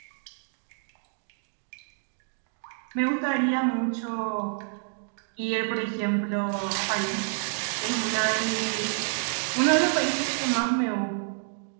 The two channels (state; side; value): silent; left; digital silence